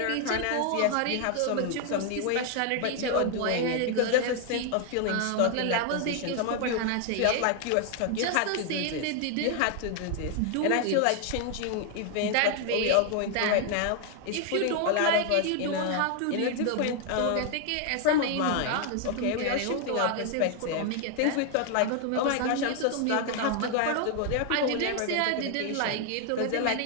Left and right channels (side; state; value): both; different; correlation 0.00